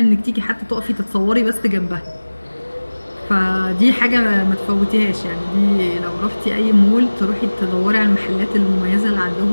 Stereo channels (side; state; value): both; inverted; correlation -1.00